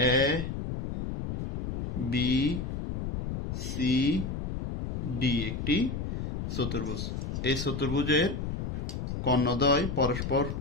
এ বি সি ডি একটি চতুর্ভুজ। এই চতুর্ভুজের কর্ণদ্বয়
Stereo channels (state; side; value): noise; left; rumble, 3 dB below the sound